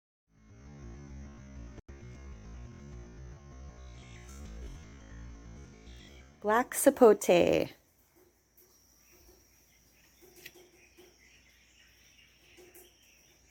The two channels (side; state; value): both; identical; correlation 1.00